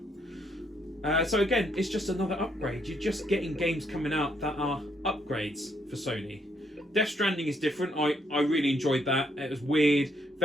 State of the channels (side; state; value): both; normal; correlation 0.72